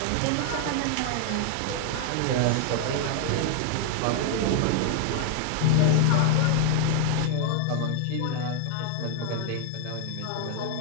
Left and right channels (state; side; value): different; both; correlation 0.00